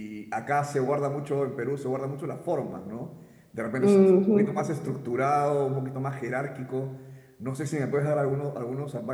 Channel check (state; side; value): identical; both; correlation 1.00